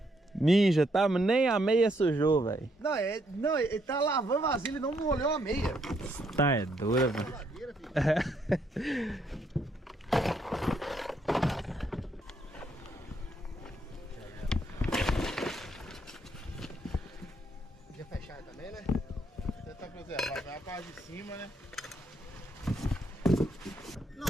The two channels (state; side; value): normal; both; correlation 0.73